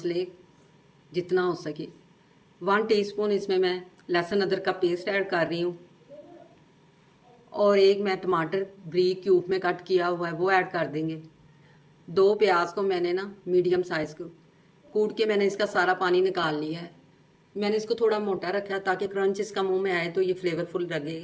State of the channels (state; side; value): identical; both; correlation 1.00